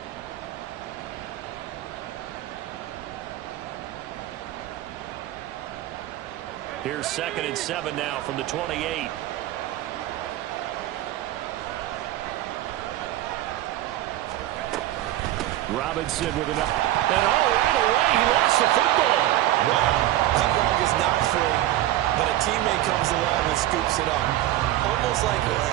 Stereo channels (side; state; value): left; quieter; 14.6 dB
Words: Here's 2nd and 7 now from the 28. Robinson with an up. And right away, he lost the football. Wow, that ball is not free, but a teammate comes along and scoops it up.